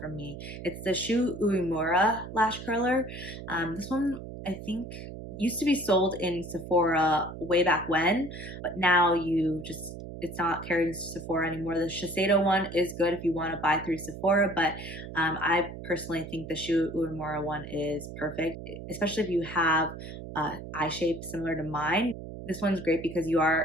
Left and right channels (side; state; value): right; noise; hum, 11 dB below the sound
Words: me. It's the Shu Uemura lash curler. This one I think used to be sold in Sephora way back when, but now it's not carried in Sephora anymore. The Shiseido one is good if you want to buy through Sephora, but I personally think the Shu Uemura one is perfect, especially if you have eye shape similar to mine. This one's great because you